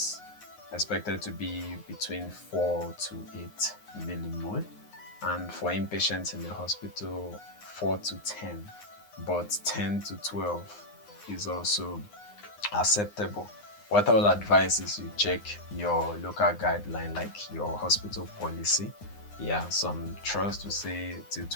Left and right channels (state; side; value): late; right; 9.6 ms